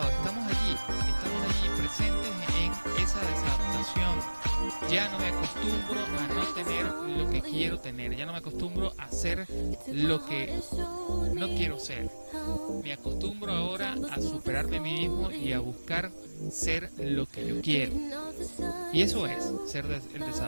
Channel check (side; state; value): both; inverted; correlation -1.00